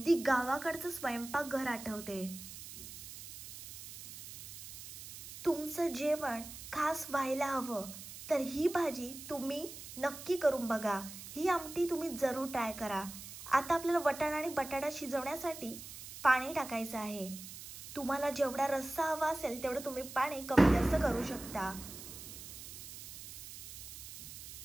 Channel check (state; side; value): noise; right; hiss, 12 dB below the sound